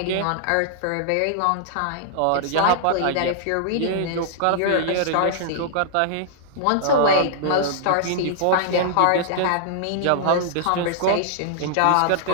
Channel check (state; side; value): different; both; correlation -0.01